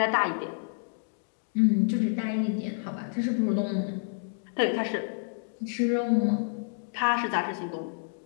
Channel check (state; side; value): silent; right; digital silence